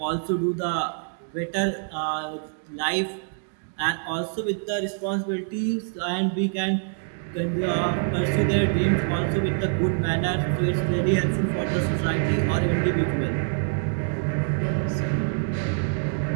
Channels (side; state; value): left; silent; 61 dB below the other